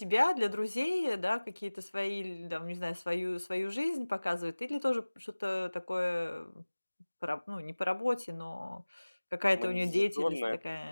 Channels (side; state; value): both; inverted; correlation -1.00